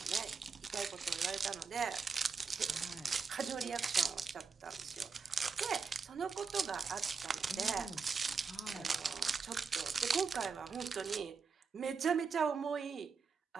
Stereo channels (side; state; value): left; quieter; 5.4 dB